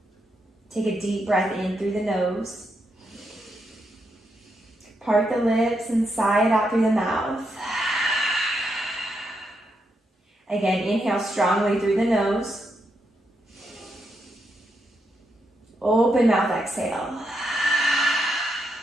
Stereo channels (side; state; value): both; normal; correlation 0.81